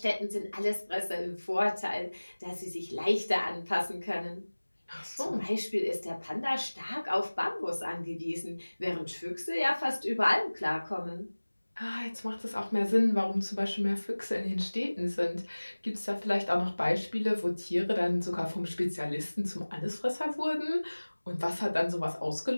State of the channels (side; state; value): both; inverted; correlation -1.00